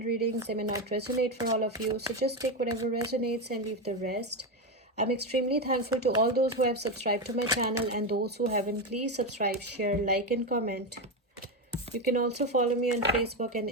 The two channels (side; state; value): both; normal; correlation 0.12